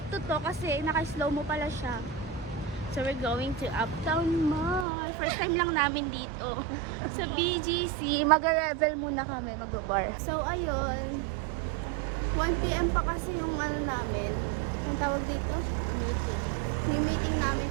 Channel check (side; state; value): left; drops out; at 4.9 s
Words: two to kasi naka-slow mo pala siya. So, we're going to Uptown Mall. First time lang namin dito. Sa BGC. Mag-revel muna kami. Mag-bar. So, ayun. 1 PM pa kasi yung ano namin. Yung tawag dito? Yung meeting namin